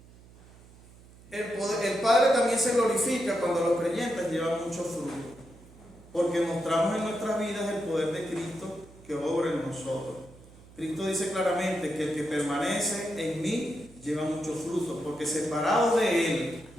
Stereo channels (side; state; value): right; noise; hum, 22 dB below the sound